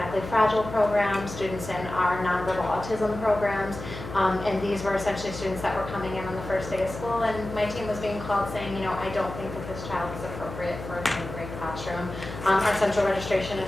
fragile program, students in our nonverbal autism programs, and these were essentially students that were coming in on the first day of school, and my team was being called saying, I don't think that this child is appropriate for a grade classroom. Our central registration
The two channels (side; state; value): left; noise; hum, 10 dB below the sound